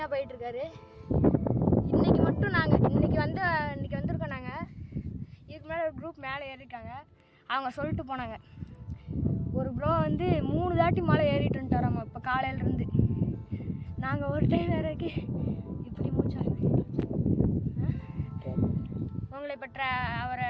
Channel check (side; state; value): both; identical; correlation 1.00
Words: போயிட்டுருக்காரு. இன்றைக்கி மட்டும் நாங்கள் இன்றைக்கி வந்திருக்கோம். நாங்கள் இதுக்கு மேலே ஒரு குரூப் மேலே ஏறியிருக்காங்க. அவங்க சொல்லிட்டு போனாங்க, ஒரு ப்ரோ வந்து 3 தாட்டி மலை ஏறிட்டு வந்துட்டாராம்மா இப்போ காலையிலேருந்து. நாங்கள் ஒரு டைம் வேறக்கு இப்படி மூச்சாகுது. உங்களை இப்போ அவரை